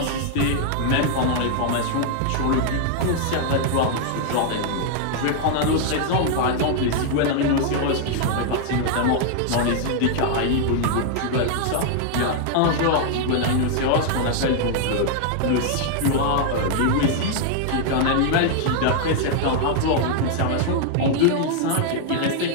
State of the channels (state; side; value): different; both; correlation 0.00